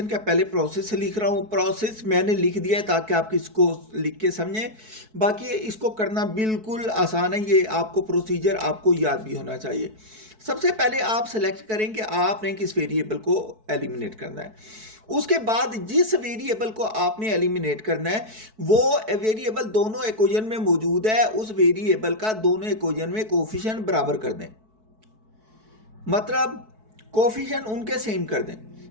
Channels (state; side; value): late; left; 4.6 ms